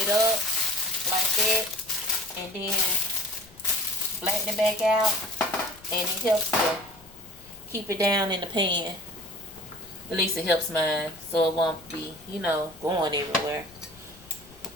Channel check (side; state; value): left; noise; rumble, 24 dB below the sound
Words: up like that, and then flatten it back out, and it helps to keep it down in the pan. At least it helps mine, so it won't be, going everywhere.